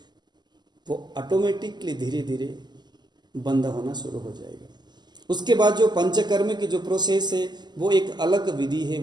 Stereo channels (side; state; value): left; late; 0.21 ms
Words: वो ऑटोमेटिकली धीरे धीरे बंद होना शुरू हो जाएगा। उसके बाद जो पंचकर्म की जो प्रोसेस है वो एक अलग विधि है,